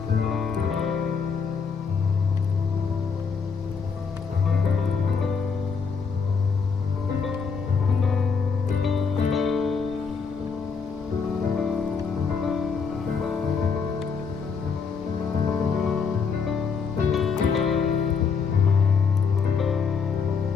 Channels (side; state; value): right; quieter; 5.6 dB